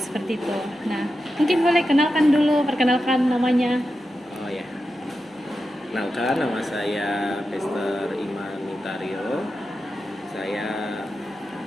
itu. Nah, mungkin boleh perkenalkan namanya. Oh ya. Kenalkan, nama saya Pastor Iman Mintario. Saya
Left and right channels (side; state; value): both; normal; correlation 0.90